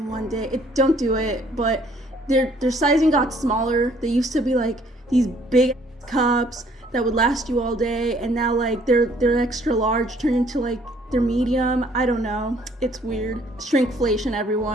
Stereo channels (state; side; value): normal; both; correlation 0.61